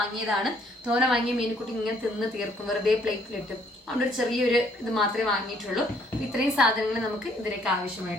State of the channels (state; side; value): normal; both; correlation 0.65